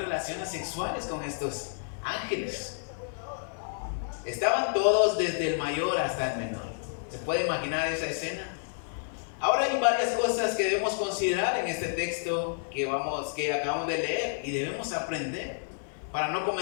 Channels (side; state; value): right; silent; 58 dB below the other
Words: sexuales con estos ángeles. Estaban todos, desde el mayor hasta el menor. ¿Se puede imaginar esa escena? Ahora hay varias cosas que debemos considerar en este texto que acabamos de leer y debemos aprender para no